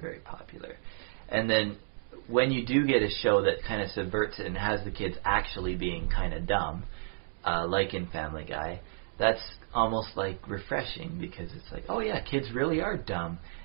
popular. And then when you do get a show that kind of subverts it and has the kids actually being kind of dumb, like in Family Guy, that's almost like refreshing because it's like, oh yeah, kids really are dumb.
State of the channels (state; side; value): silent; left; digital silence